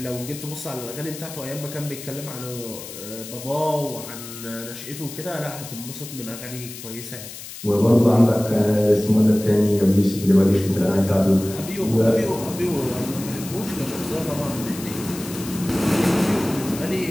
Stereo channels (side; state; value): left; noise; hiss, 12 dB below the sound